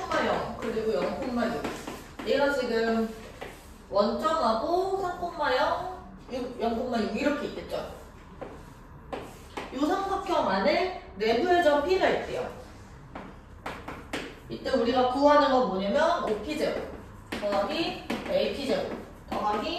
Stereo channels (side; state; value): both; identical; correlation 1.00